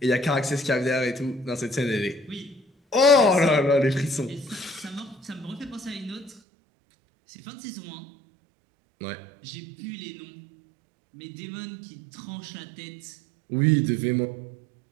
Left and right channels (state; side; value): drops out; left; at 6.4 s